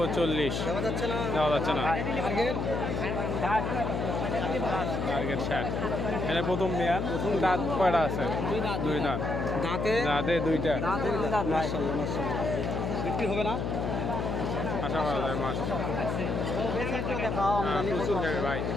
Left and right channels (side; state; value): left; noise; hum, 1 dB below the sound